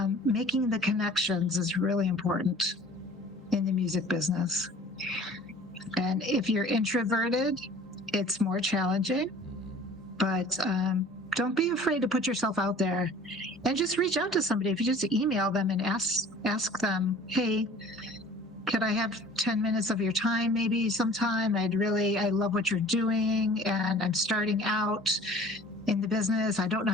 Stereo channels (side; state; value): both; normal; correlation 0.47